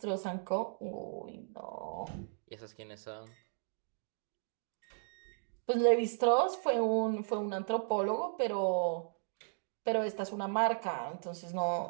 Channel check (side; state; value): left; silent; digital silence